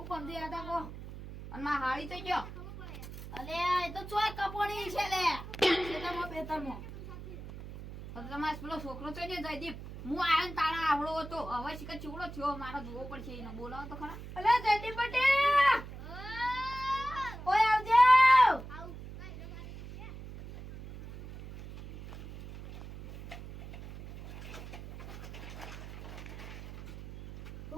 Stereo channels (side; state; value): right; noise; hum, 12 dB below the sound